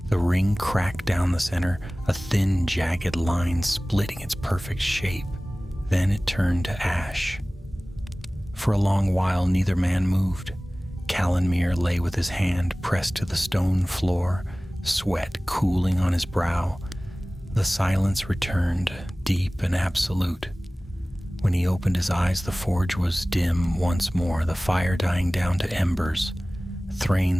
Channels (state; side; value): normal; both; correlation 0.98